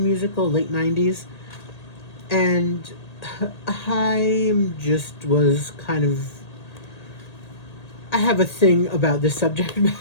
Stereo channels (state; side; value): late; right; 1.8 ms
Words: late 90s. And I just was kind of, I have a thing about this subject